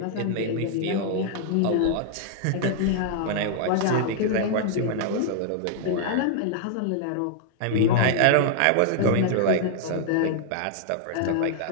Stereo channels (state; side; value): different; both; correlation 0.00